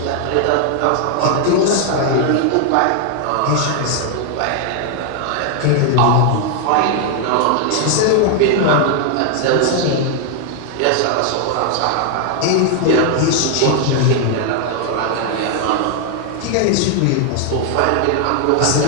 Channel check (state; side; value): different; both; correlation 0.00